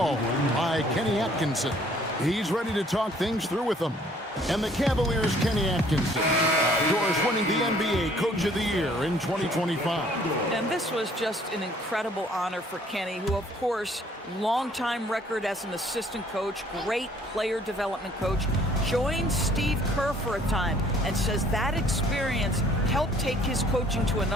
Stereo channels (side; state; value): both; normal; correlation 0.59